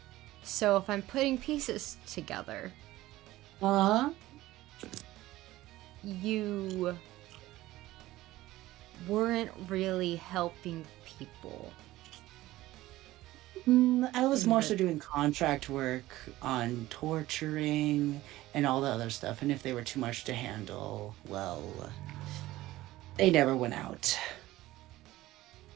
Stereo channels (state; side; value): quieter; left; 16.7 dB